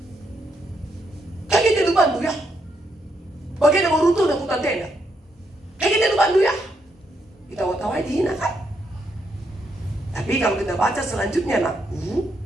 Kayak kita itu bantu ya. Bagian yang runtuh dan hutan tenda. Kayak kita itu bantu ya. Kita tawa-tawa dihina kan. Tapi kalau kita baca selanjutnya nak,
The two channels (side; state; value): both; normal; correlation 0.78